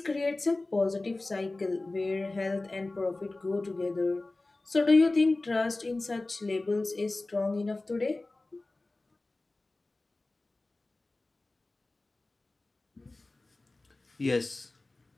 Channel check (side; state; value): right; quieter; 3.0 dB